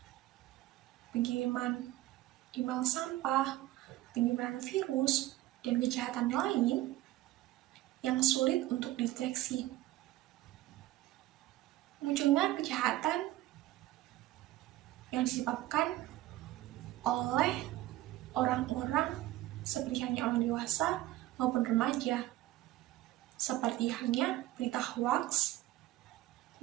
pengiriman email sampah, penyebaran virus, dan kejahatan lain yang sulit untuk dideteksi. Munculnya kejahatan yang disebabkan oleh orang-orang seperti hanya orang dewasa maupun remaja, seperti halnya berita hoax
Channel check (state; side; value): quieter; left; 16.0 dB